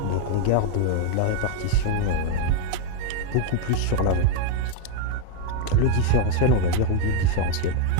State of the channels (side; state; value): both; different; correlation 0.01